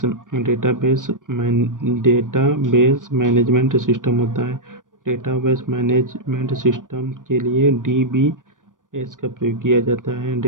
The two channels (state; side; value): late; left; 0.88 ms